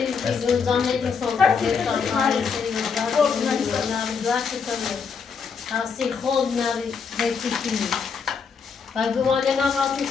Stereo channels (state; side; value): quieter; right; 5.8 dB